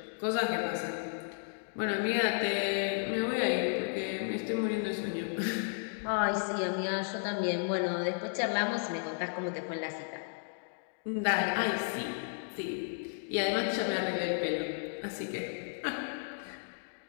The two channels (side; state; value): right; silent; digital silence